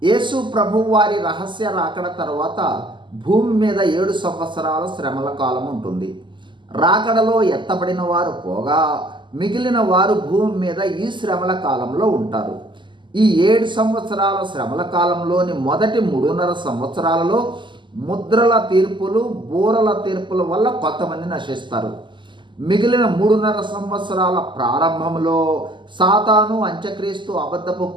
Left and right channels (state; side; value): late; left; 0.23 ms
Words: యేసు ప్రభువు వారి రహస్య రాకడ తర్వాత భూమి మీద 7 సంవత్సరాల శ్రమల కాలం ఉంటుంది. రాకడలో ఎత్తబడిన వారు పోగా మిగిలిన వారు భూమి మీద ఈ శ్రమల కాలంలో ఉంటారు. ఈ 7 సంవత్సరాల శ్రమల కాలంలోని మొదటి 3.5 సంవత్సరాలలో ముద్రల తీర్పులు, బూరల తీర్పుల వల్ల కొంతమంది నశిస్తారు. మిగిలిన 3.5 సంవత్సరాల ప్రారంభంలో సాతాను, అంత్యక్రీస్తు, అబద్ధపు